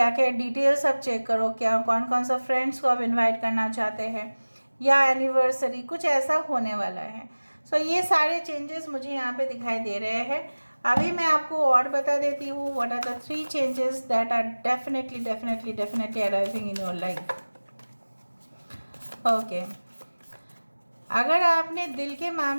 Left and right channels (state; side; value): inverted; both; correlation -1.00